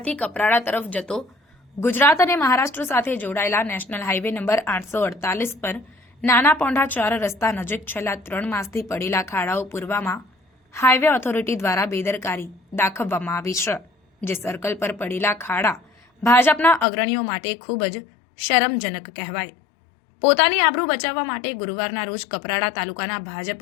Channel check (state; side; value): drops out; right; at 16.9 s